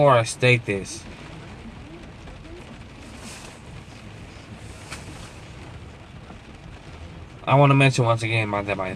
I state this, I want to mention once again that my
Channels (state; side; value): identical; both; correlation 1.00